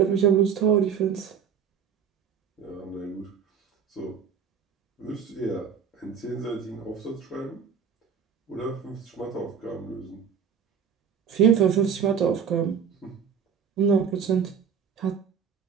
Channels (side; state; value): left; quieter; 7.2 dB